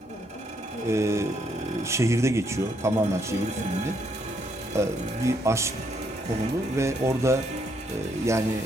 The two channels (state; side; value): normal; both; correlation 0.73